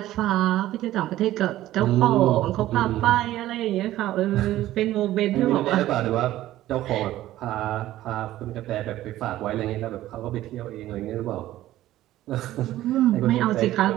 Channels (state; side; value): quieter; left; 14.6 dB